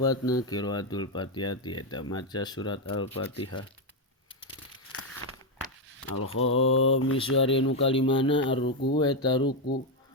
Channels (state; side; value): normal; both; correlation 0.05